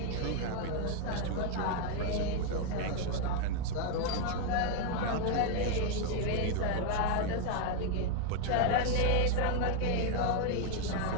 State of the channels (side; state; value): both; different; correlation 0.01